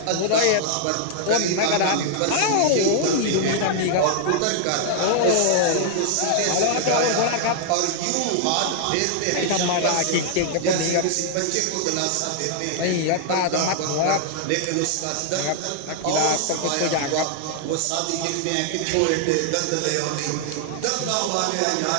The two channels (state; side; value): different; both; correlation 0.00